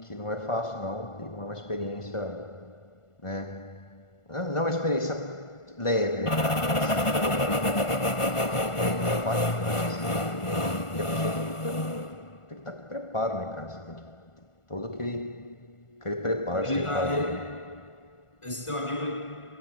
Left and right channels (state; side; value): late; right; 1.4 ms